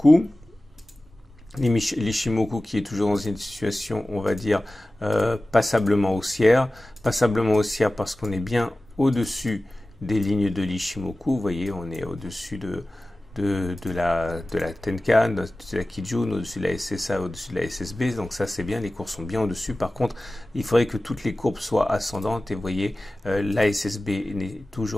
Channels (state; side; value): normal; both; correlation 0.96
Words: L'Ichimoku qui est toujours dans une situation, on va dire, passablement haussière. Passablement haussière parce qu'on est bien au-dessus des lignes de l'Ichimoku. Vous voyez, on est au-dessus de la Tenkan, au-dessus de la Kijun, au-dessus de la SSA, au-dessus de la SSB, donc ça c'est bien, les courbes sont bien au-dessus. Par contre, il faudrait que toutes les courbes soient ascendantes, et vous voyez, la SSB n'est